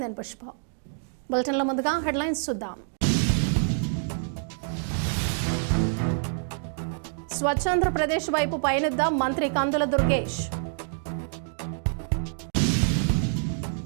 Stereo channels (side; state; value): left; silent; digital silence